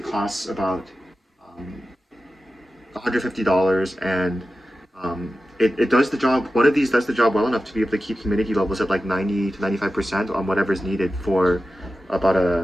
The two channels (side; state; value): both; normal; correlation 0.93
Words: costs about um, $150, and it does the job. One of these does the job well enough to be able to keep humidity levels at like 90 to 95% on whatever is needed for about